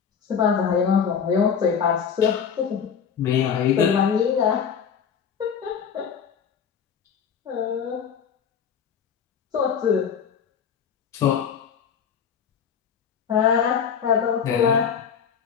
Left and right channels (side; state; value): right; quieter; 7.2 dB